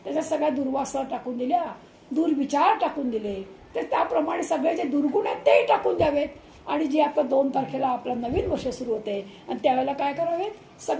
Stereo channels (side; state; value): both; identical; correlation 1.00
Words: त्याच्यात सगळ्या दुर्वासना टाकून दिल्या, दुर्विचार टाकून दिले. तर त्याप्रमाणे सगळे जे दुर्गुण आहेत तेही टाकून द्यावेत. आणि जी आता 2 तारखेला आपलं नवीन वर्ष सुरू होते आणि त्यावेळेला काय करावेत,